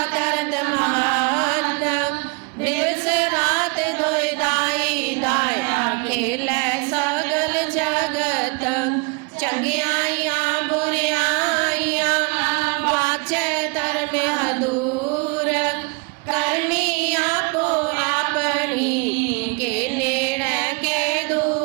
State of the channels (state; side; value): quieter; left; 31.7 dB